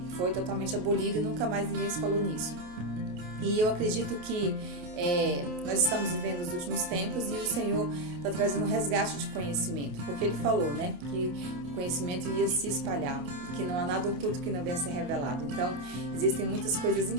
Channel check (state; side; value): late; left; 28 ms